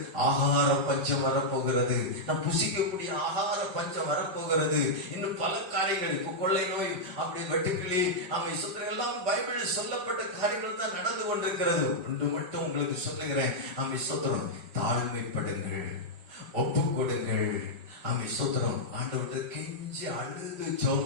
ஆகார பஞ்சம் வரப்போகிறது. நாம் புசிக்கக்கூடிய ஆகார பஞ்சம் வரப்போகிறது. இன்னும் பல காரியங்கள், இப்போ கொள்ளை நோய், அப்படி வெட்டுக்கிளி, ஆமென், ஸ்தோத்திரம், எல்லாம் பைபிளில் சொல்லப்பட்ட காரியங்கள் தான் நடந்து கொண்டிருக்கிறது. ஒன்று மட்டும் உங்களுக்கு சொல்லுகிறேன், ஆமென், ஸ்தோத்திரம். தாழ்மைப்படுங்கள், ஒப்பு கொடுங்கள். ஆமென், ஸ்தோத்திரம். ஆண்டவர்கிட்ட கெஞ்சி அழுது ஜெபம்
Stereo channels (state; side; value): late; left; 5.2 ms